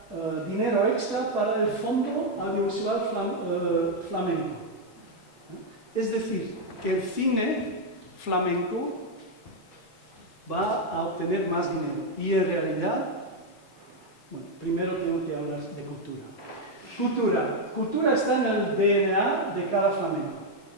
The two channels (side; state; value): both; normal; correlation 0.01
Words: dinero extra para el Fondo Audiovisual Flamenco. Es decir, que el cine flamenco va a obtener más dinero. Y en realidad, bueno, primero tengo que hablar de cultura. Cultura está en el DNA de cada flamenco.